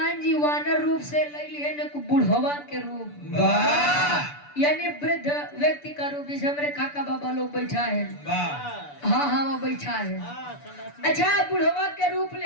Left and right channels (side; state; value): right; late; 6.9 ms